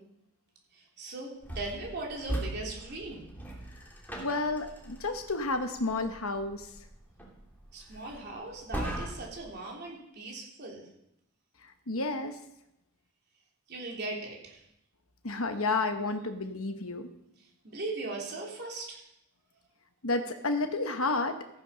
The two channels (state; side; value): normal; both; correlation 0.07